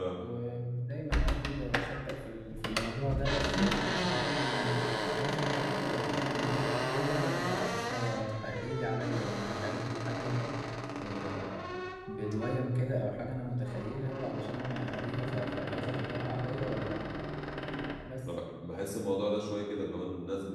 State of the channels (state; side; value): identical; both; correlation 1.00